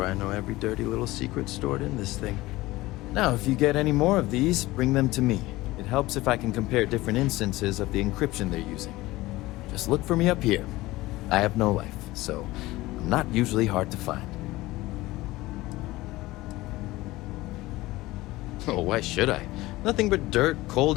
I know every dirty little secret stored in this thing. Now, if you get any more of these, bring them to me. It helps if I can compare different instances of the encryption they're using. Just look for me up here. I have no life, so I'm not usually hard to find. Oh, why should I? Nothing but dirt, cold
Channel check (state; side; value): quieter; right; 18.8 dB